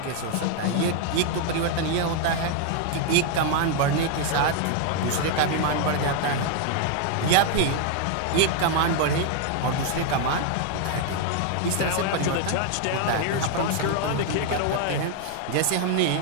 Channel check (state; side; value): different; both; correlation 0.00